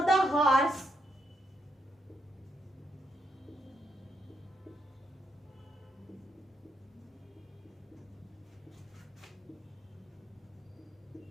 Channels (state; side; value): normal; both; correlation 0.78